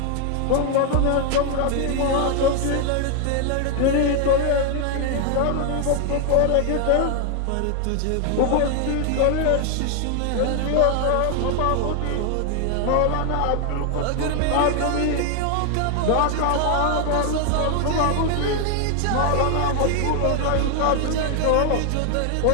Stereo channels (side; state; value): both; different; correlation 0.00